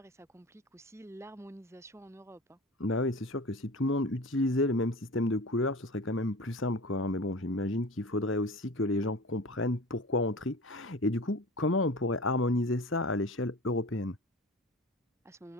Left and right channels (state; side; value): normal; both; correlation 0.35